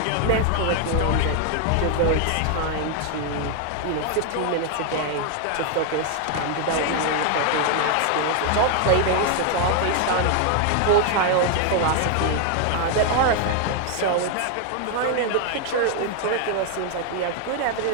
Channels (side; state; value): both; different; correlation 0.00